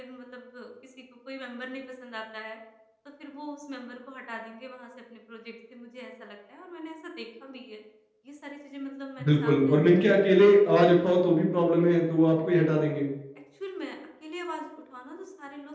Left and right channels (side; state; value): both; identical; correlation 1.00